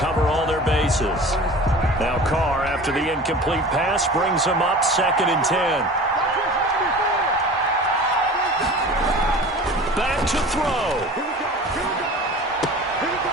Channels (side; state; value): both; normal; correlation 0.39